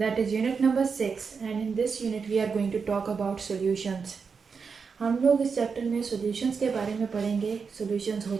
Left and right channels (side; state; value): left; quieter; 5.5 dB